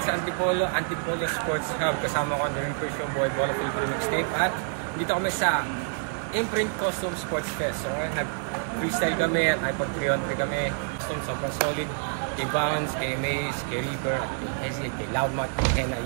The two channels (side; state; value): left; silent; digital silence